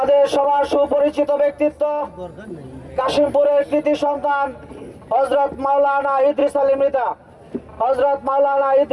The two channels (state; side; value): identical; both; correlation 1.00